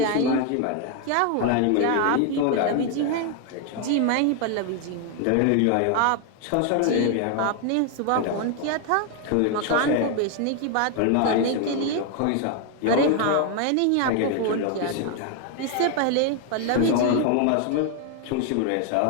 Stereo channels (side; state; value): both; different; correlation 0.01